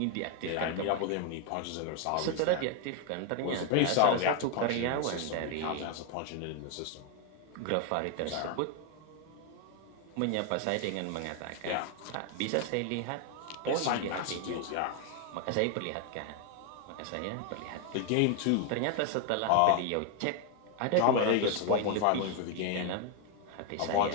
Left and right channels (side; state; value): both; different; correlation 0.01